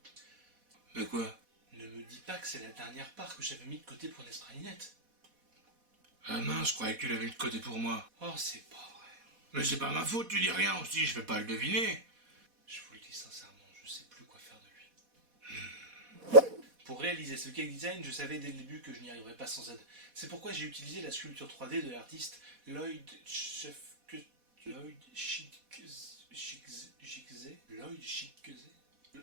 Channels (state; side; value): late; left; 4.1 ms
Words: Mais quoi? Ne me dis pas que c'est la dernière part que j'avais mis de côté pour Nespresso. Ah mince, je croyais que tu l'avais mis de côté pour moi. Oh, c'est pas vrai. Mais c'est pas ma faute, tu dis rien aussi, je vais pas le deviner. Je vous le dis sincèrement, je sais plus quoi faire de lui. Pour réaliser ce cake design, je savais dès le début que je n'y arriverais pas sans aide. C'est pourquoi j'ai utilisé la sculpture 3D de l'artiste Lloyd Schickze. Lloyd Schickze. Lloyd Schickze.